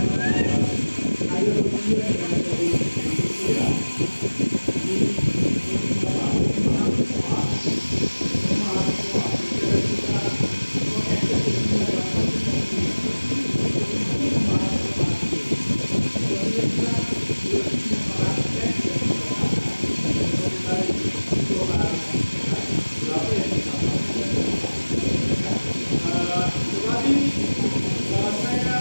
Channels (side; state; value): both; inverted; correlation -1.00